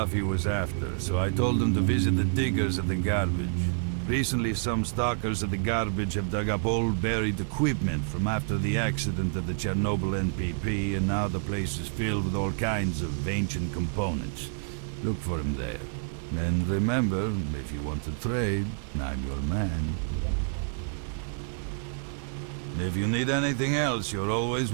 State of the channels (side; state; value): left; silent; digital silence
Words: he was after, so I told him to visit the diggers at the garbage. Recently, some stalkers at the garbage have dug up old buried equipment from after the accident at the Chernobyl NPP, and now the place is filled with all kinds of ancient components. Look for him there. And remember, if you want to trade, I'm your man. If you need anything else, you're always